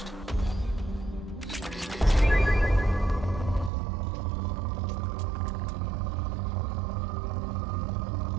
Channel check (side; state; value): left; drops out; at 3.7 s